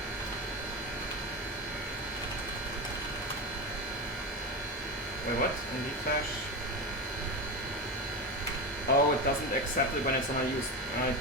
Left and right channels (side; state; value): both; normal; correlation 0.20